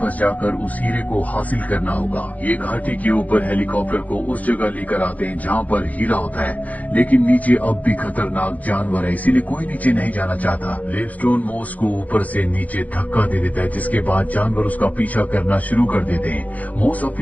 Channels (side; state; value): right; late; 0.076 ms